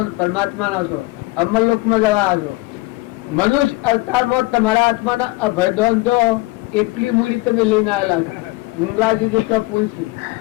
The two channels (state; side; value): quieter; right; 21.3 dB